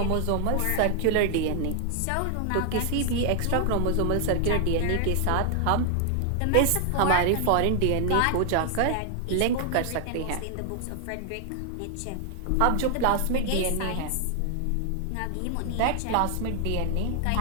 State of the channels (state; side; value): different; both; correlation 0.00